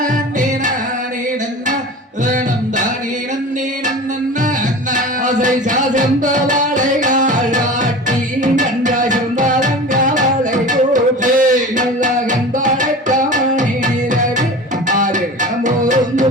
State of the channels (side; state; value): both; normal; correlation 0.35